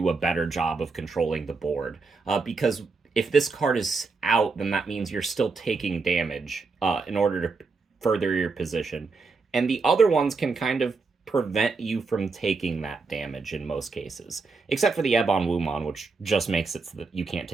a better job of controlling the board. Because if this card is out, then that means you're still taking damage in order to further your position. And the other ones can kind of prevent you from taking that damage in most cases. Except for the Ebon Wumon, which just makes it so that you can't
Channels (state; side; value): quieter; left; 4.3 dB